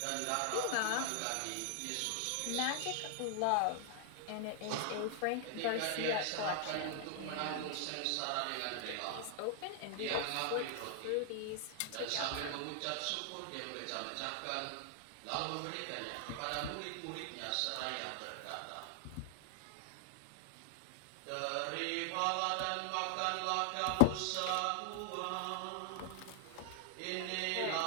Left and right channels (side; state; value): both; different; correlation 0.00